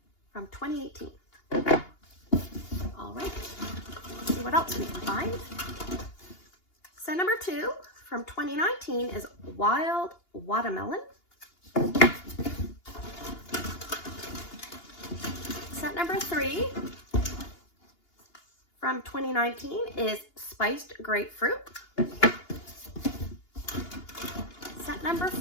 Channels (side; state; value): right; late; 2.8 ms